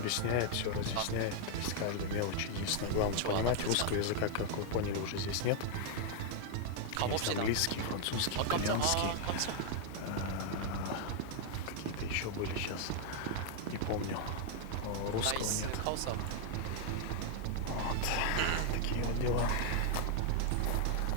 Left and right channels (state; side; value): different; both; correlation 0.00